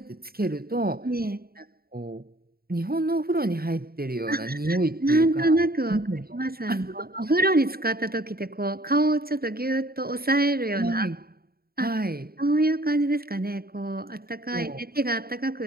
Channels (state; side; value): late; left; 0.44 ms